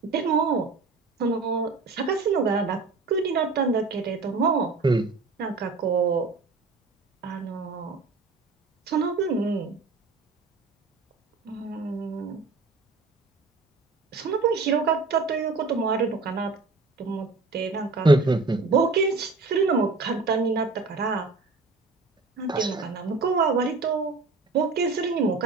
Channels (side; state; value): left; quieter; 4.0 dB